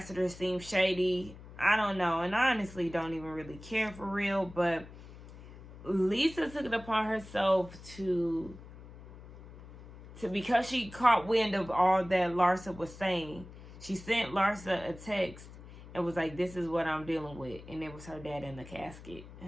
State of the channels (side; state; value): left; noise; hum, 17 dB below the sound